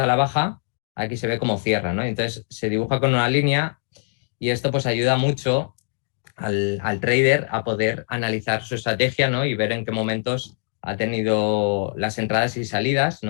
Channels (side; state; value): right; silent; digital silence